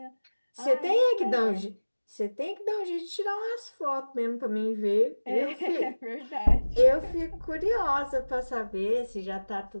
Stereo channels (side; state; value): both; inverted; correlation -1.00